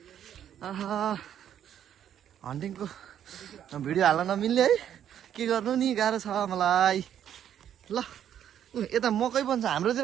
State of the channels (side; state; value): left; quieter; 9.9 dB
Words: हन्टिङको भिडियो हाल्न नमिल्ने है, के गर्नु नि, गाह्रो छ मलाई। ल यता मकै पनि छ, हाम्रोतिर